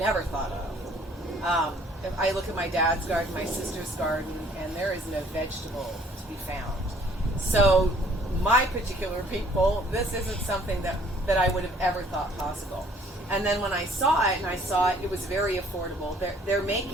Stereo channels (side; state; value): both; normal; correlation 0.58